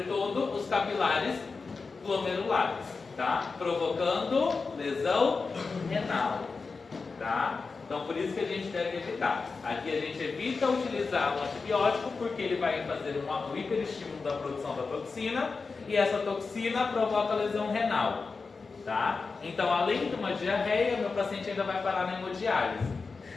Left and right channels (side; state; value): right; quieter; 4.4 dB